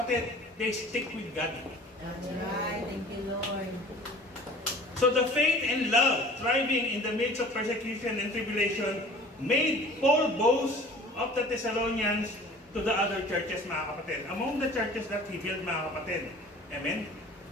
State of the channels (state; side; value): normal; both; correlation 0.46